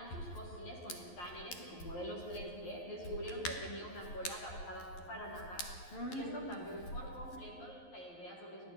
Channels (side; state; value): right; late; 11 ms